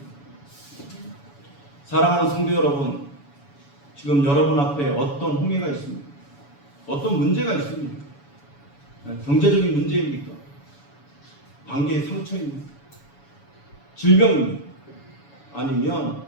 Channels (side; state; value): right; late; 7.1 ms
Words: 사랑하는 성도 여러분, 지금 여러분 앞에 어떤 홍해가 있습니까? 어떤 문제가 있습니까? 경제적인 문제입니까? 관계의 상처입니까? 질병입니까? 아니면